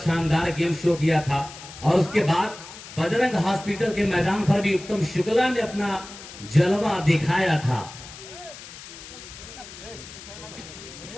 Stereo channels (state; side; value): noise; left; hiss, 15 dB below the sound